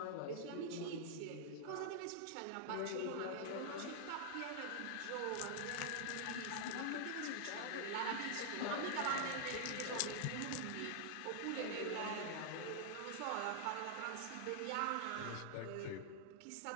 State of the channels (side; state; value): both; different; correlation 0.00